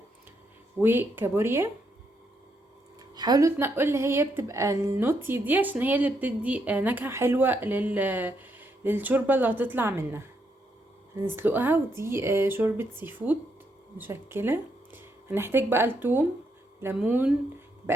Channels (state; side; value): normal; both; correlation 0.77